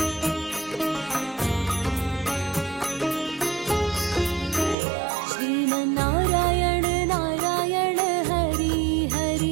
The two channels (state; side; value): drops out; left; at 4.8 s